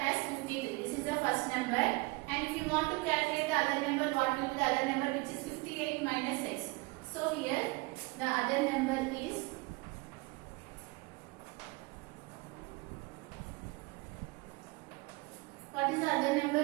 53. This is the first number. And if you want to calculate the other number, what will be the other number, which is 58 minus x. So here the other number is what is the other number,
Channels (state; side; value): quieter; left; 24.8 dB